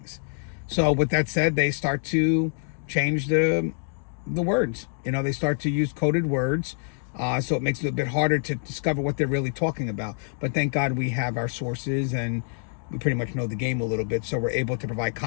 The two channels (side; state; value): right; silent; digital silence